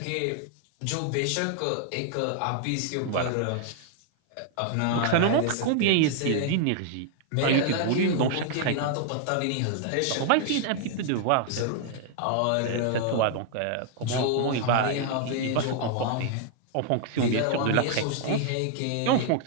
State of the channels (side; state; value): both; different; correlation 0.00